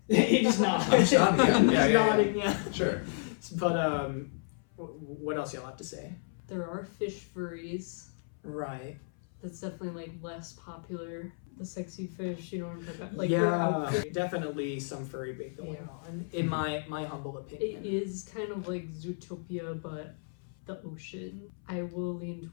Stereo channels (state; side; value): silent; right; 56 dB below the other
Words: He just nodded. I'm just nodding, yeah. He's nodding, yeah. Sure. But what else y'all have to say? There are fish furries. Right. That's definitely like less popular. The sexy fish, you know what I'm talking about? Like, yeah, definitely some furry bait going on, in my humble opinion. It is kind of like Zootopia, but the ocean. I will lean